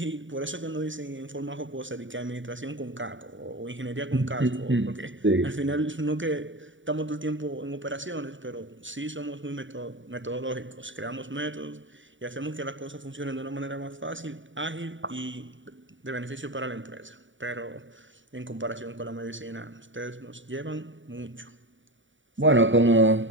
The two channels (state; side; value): late; left; 0.55 ms